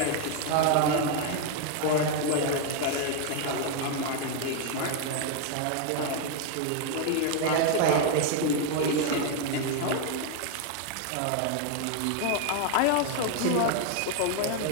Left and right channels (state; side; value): different; both; correlation 0.01